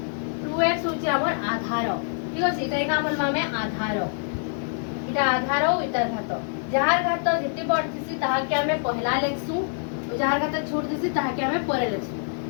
2x होचे हमर आधार ठीक अछि त एका हमर मामे आधार इटा आधार इटा घात जहार घात जति बड़ थिसी ताहा के हमें पहला लिखसु जहार घात छोट थिसी ताहा के हमें परे लिखसु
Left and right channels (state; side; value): silent; right; digital silence